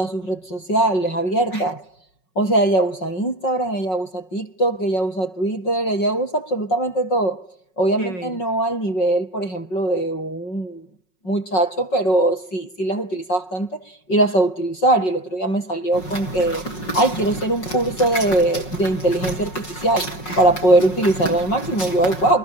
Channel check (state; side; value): late; right; 5.4 ms